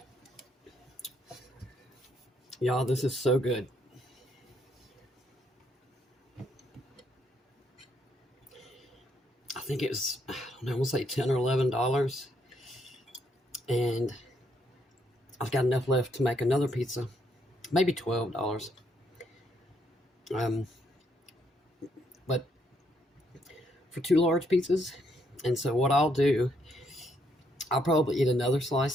Y'all, this is so good. I think it was, I don't know, I want to say $10 or $11. And I've got enough left to make another pizza. Maybe $12. But for 2 large pizzas. And so what I'll do, I'll probably eat another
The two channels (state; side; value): normal; both; correlation 0.73